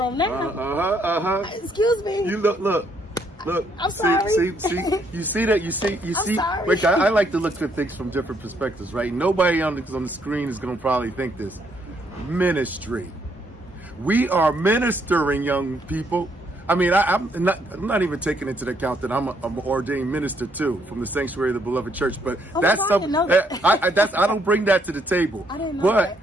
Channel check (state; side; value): normal; both; correlation 0.71